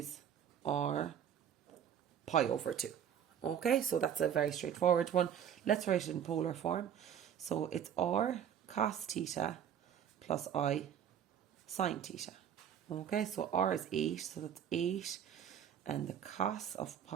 or pi over 2. Okay, so that's a very straightforward one. Let's write it in polar form. So it's r cos theta plus I sine theta. Okay, so r is 8, so that's 8, and the cos of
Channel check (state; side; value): quieter; left; 9.0 dB